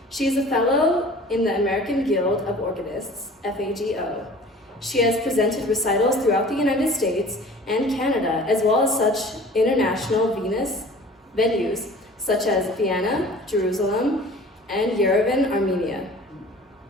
She is a fellow in the American Guild of Organists, FAGO. She has presented recitals throughout the United States and Canada, as well as such international venues such as Vienna, Jerusalem, and Yerevan, Armenia.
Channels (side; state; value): both; normal; correlation 0.45